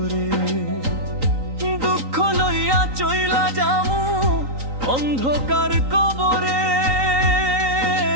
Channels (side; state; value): left; late; 3.9 ms